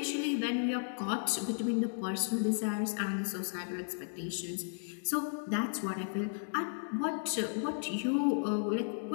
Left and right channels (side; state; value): right; silent; digital silence